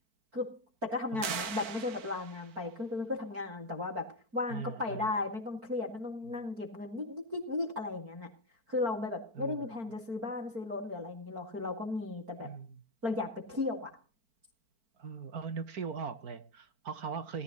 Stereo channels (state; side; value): late; left; 4.5 ms